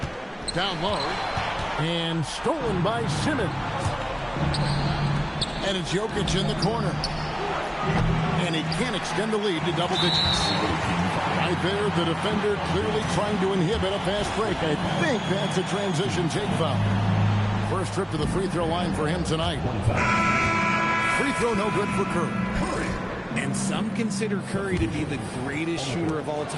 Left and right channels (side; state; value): both; identical; correlation 1.00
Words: Down low. And stolen by Simmons. And it's Jokic in the corner. And he can't extend the lead to double digits. Right there, the defender clearly trying to inhibit a fast break. I think that's a transition take foul. First trip to the free throw line for him tonight. Free throw no good for Curry. And some consider Curry to be the greatest shooter of all